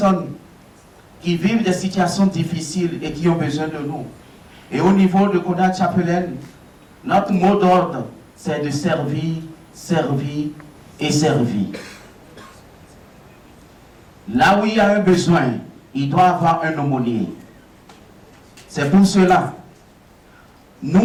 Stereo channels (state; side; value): identical; both; correlation 1.00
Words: qui vivent des situations difficiles et qui ont besoin de nous. Et au niveau de Konas Chaplin, notre mot d'ordre, c'est de servir, servir et servir. Là où il y a un besoin, il doit avoir un aumônier. C'est pour cela,